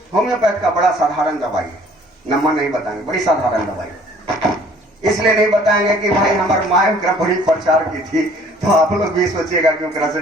होम्योपैथ का बड़ा साधारण दवाई है, नंबर नहीं बताएंगे, बड़ी साधारण दवाई। इसलिए नहीं बताएंगे कि भाई हमारे माँ बड़ी प्रचार की थी तो आप लोग भी सोचिएगा कि ओकरा से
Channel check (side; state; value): both; normal; correlation 0.55